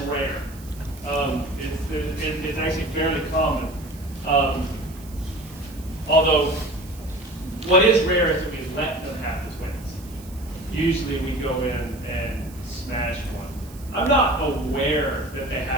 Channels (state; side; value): noise; right; hiss, 21 dB below the sound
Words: It's actually fairly common. Although, what is rare is that we let them have the twins. Usually we go in and smash one. I'm not aware that they